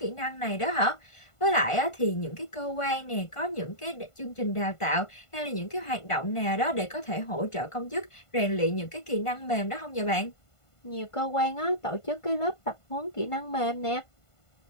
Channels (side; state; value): right; late; 1.5 ms